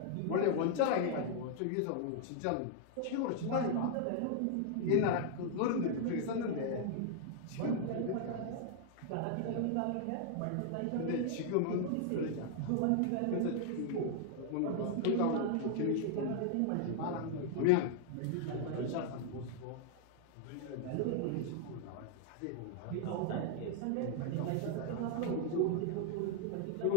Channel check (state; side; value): different; both; correlation -0.01